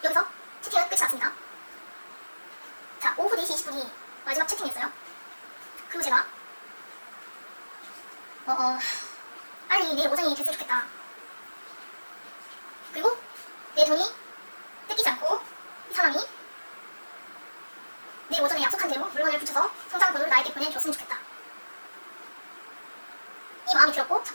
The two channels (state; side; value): inverted; both; correlation -1.00